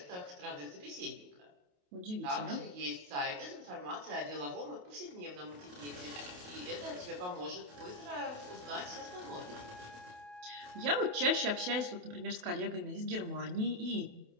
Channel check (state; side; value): late; left; 28 ms